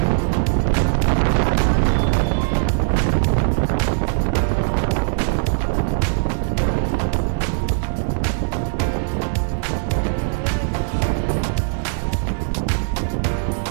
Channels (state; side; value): silent; left; digital silence